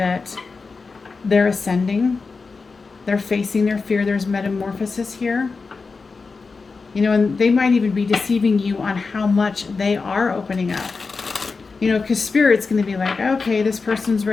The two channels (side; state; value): right; quieter; 4.4 dB